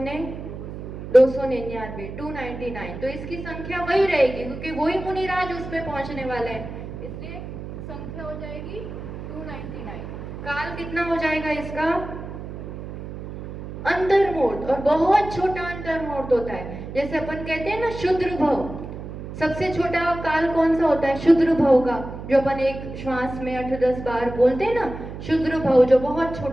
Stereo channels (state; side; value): noise; right; hum, 10 dB below the sound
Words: ने, 299, 299। तो इसकी संख्या वही रहेगी, क्योंकि वही मुनिराज उस पे पहुंचने वाले हैं, इसलिए संख्या हो जाएगी 299। काल कितना हो जाएगा इसका, अंतर्मूर्त, और बहुत छोटा अंतर्मूर्त होता है। जैसे अपन कहते हैं ना शुद्र भव, सबसे छोटा काल कौन सा होता है, शुद्र भव का, जो अपन एक श्वास में 8-10 बार बोलते हैं ना, शुद्र भव, जो बहुत